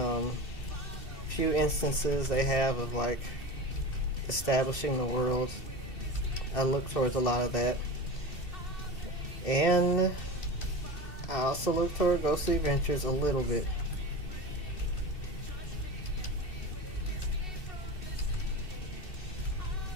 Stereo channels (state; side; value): late; right; 2.7 ms